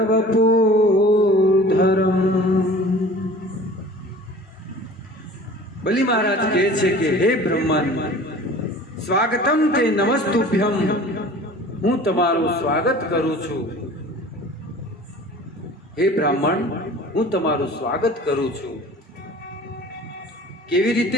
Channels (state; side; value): normal; both; correlation 0.43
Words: બલિ મહારાજ કહે છે કે હે બ્રહ્મન, સ્વાગતમ તે નમસ્તુભ્યમ, હું તમારું સ્વાગત કરું છું. હે બ્રાહ્મણ, હું તમારું સ્વાગત કરું છું. કેવી